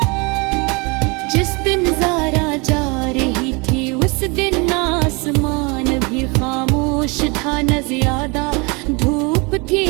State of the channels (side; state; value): left; quieter; 29.0 dB